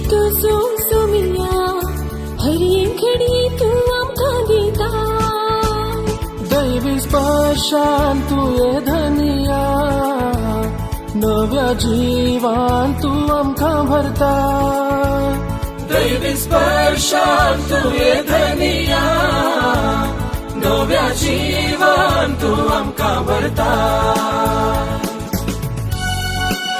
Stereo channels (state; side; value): identical; both; correlation 1.00